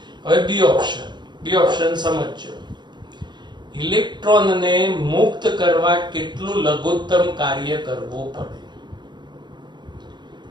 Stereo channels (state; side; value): late; left; 0.21 ms